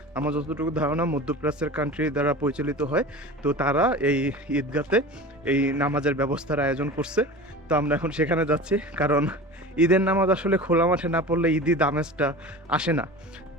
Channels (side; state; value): both; normal; correlation 0.34